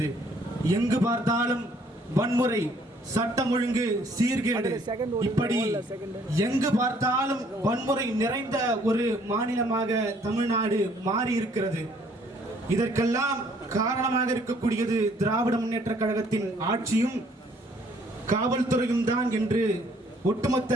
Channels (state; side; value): normal; both; correlation 0.62